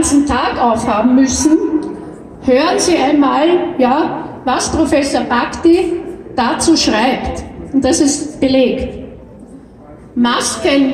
Tag aufhaben müssen. Hören Sie einmal, ja, was Professor Bhakdi dazu schreibt. Und das ist belegt.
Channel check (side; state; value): both; identical; correlation 1.00